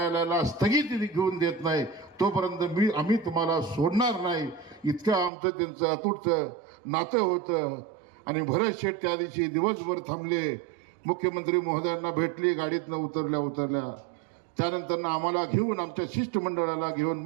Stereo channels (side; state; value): left; drops out; at 5.3 s